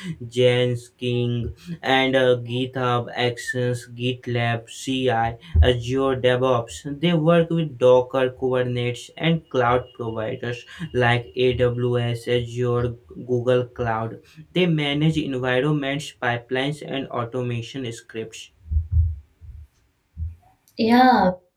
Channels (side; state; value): both; identical; correlation 1.00